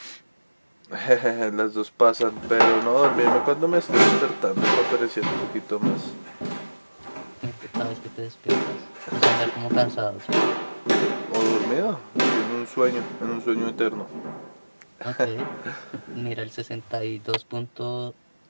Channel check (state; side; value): inverted; both; correlation -1.00